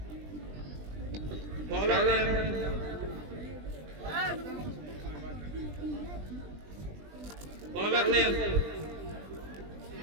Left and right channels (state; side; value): late; left; 20 ms